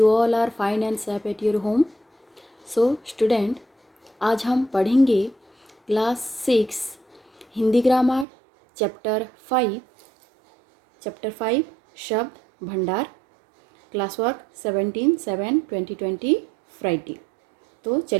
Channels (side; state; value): left; drops out; at 8.2 s